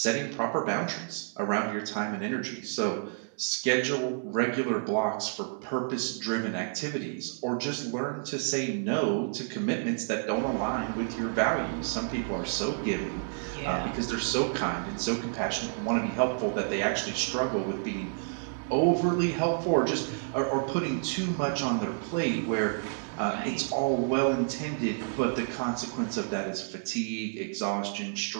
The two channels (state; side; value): silent; left; 58 dB below the other